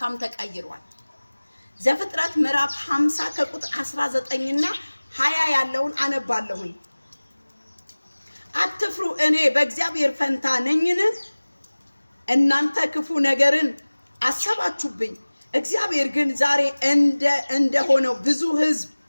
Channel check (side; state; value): both; inverted; correlation -1.00